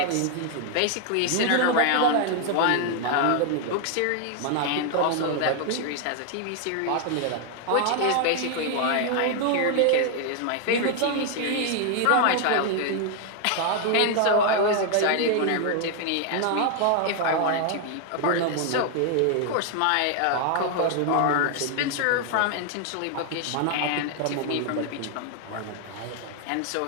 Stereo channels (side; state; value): both; different; correlation 0.00